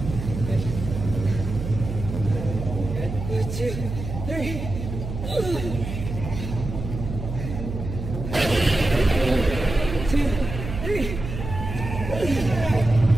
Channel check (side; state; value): right; noise; hum, 7 dB below the sound